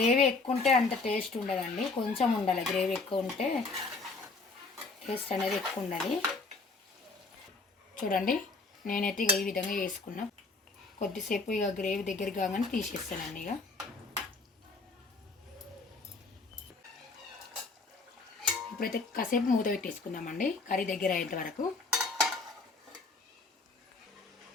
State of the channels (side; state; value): right; quieter; 3.8 dB